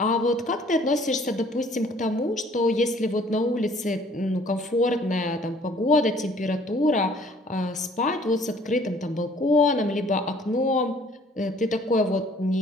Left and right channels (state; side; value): normal; both; correlation 0.57